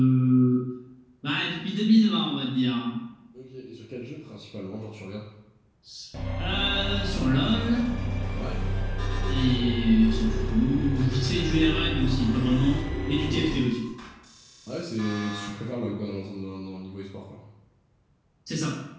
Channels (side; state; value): both; identical; correlation 1.00